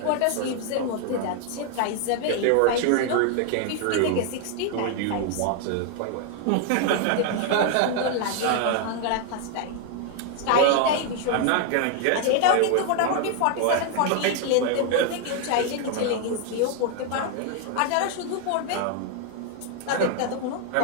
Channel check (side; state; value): both; different; correlation 0.00